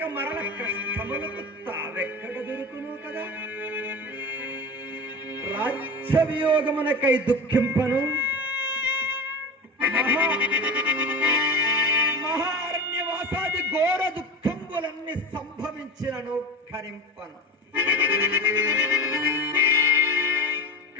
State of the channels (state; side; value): normal; both; correlation 0.28